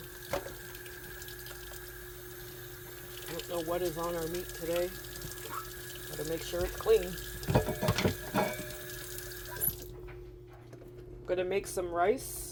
I don't know what is on our meat today. Gotta make sure it's clean. I'm gonna make some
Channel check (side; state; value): both; identical; correlation 1.00